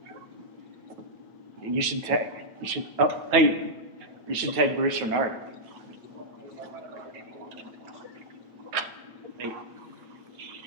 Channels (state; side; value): late; left; 9.2 ms